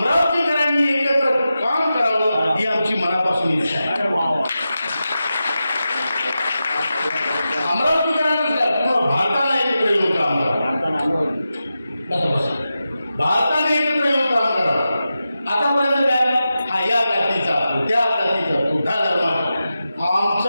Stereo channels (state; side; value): inverted; both; correlation -0.91